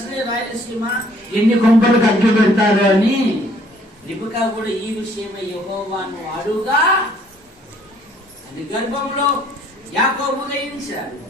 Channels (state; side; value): normal; both; correlation 0.61